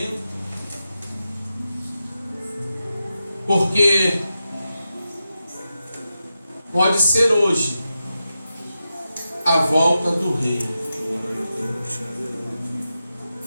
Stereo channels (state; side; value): inverted; both; correlation -0.90